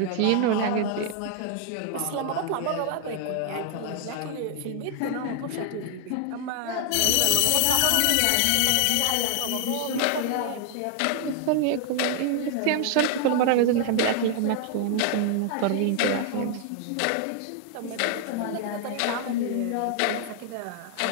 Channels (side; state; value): both; different; correlation 0.00